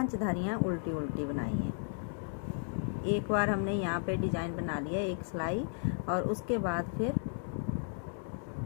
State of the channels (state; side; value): silent; right; digital silence